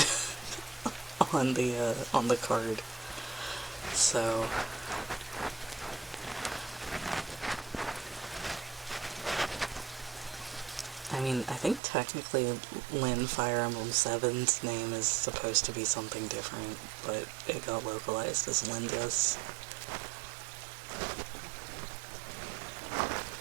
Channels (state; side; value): drops out; left; at 11.8 s